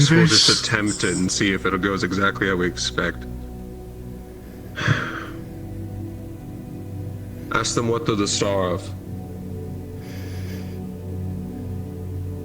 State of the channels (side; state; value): both; identical; correlation 1.00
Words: we'll Inverse. just attempt it and see if it goes exactly how we expect. Ask them what they're the star of.